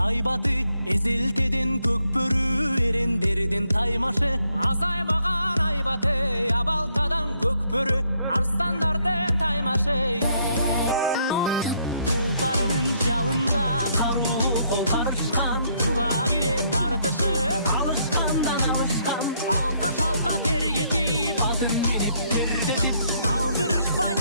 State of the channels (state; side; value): inverted; both; correlation -0.71